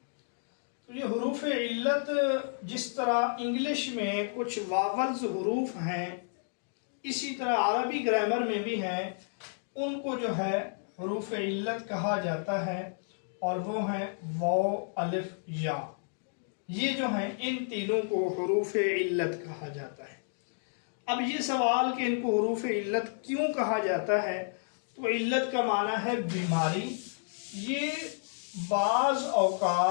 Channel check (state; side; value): silent; right; digital silence